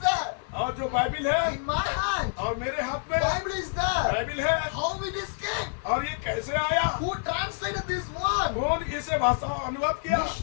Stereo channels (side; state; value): right; silent; 60 dB below the other